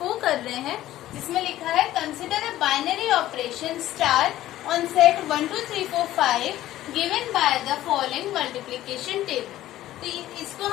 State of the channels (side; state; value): right; quieter; 14.2 dB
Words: कर रहे हैं, जिसमें लिखा है consider a binary operation star on set 1 2 3 4 5 given by the following multiplication table. तो इसको